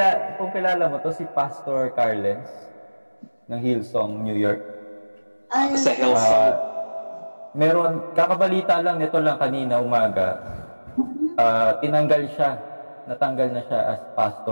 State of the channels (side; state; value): both; inverted; correlation -1.00